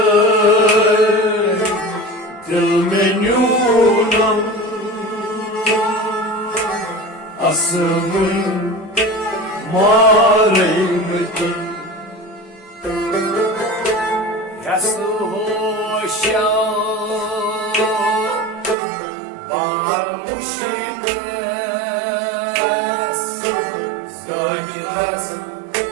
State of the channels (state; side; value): drops out; left; at 18.8 s